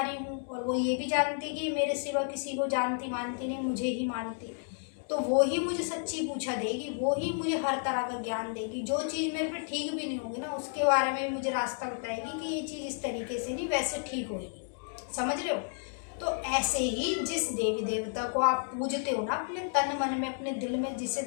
हूँ, और वो ये भी जानती कि मेरे सिवा किसी को जानती मानती नहीं, मुझे ही मानती। तो वो ही मुझे सच्ची पूछा देगी, वो ही मुझे हर तरह का ज्ञान देगी। जो चीज़ मेरे पे ठीक भी नहीं होगी ना, उसके बारे में मुझे रास्ता बताएगी कि ये चीज़ इस तरीके से नहीं, वैसे ठीक होगी। समझ रहे हो। तो ऐसे ही जिस देवी देवता को आप पूजते हो ना, अपने तन मन में, अपने दिल में जिसे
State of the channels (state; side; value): silent; right; 56 dB below the other